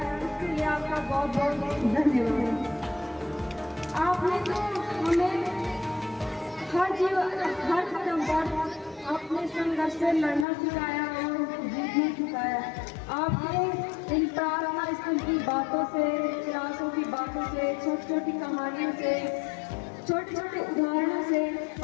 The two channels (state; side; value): drops out; right; at 10.5 s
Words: इसके लिए आपका बहुत बहुत धन्यवाद। आपने तो हमें हर कदम पर अपने संघर्ष से लड़ना सिखाया और जीतना सिखाया। आपने इन प्रार्थना स्थल की बातों से, क्लासों की बातों से, छोटी छोटी कहानियों से, छोटे छोटे उदाहरणों से